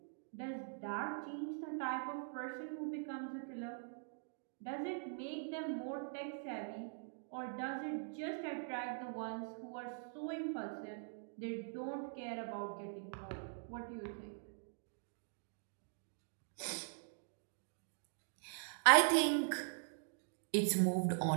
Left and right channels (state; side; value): silent; left; digital silence